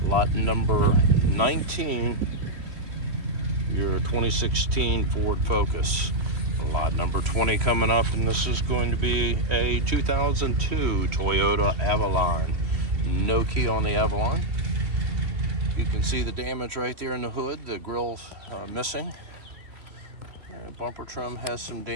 lot number 19, your 2016 Ford Focus. Lot number 20 coming up, and this is going to be a 2002 Toyota Avalon. No key on the Avalon. You can see the damage right there in the hood, the grille missing. And bumper trim has some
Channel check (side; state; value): left; late; 3.1 ms